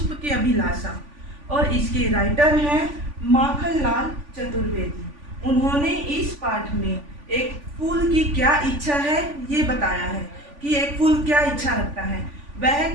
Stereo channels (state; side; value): late; left; 3.5 ms